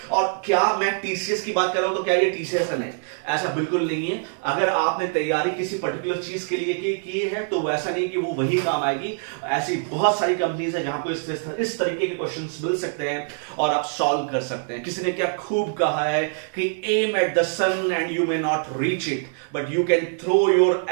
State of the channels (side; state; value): left; silent; 62 dB below the other